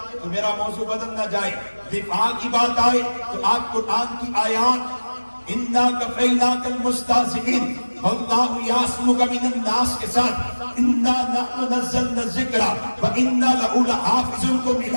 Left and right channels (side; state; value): both; inverted; correlation -1.00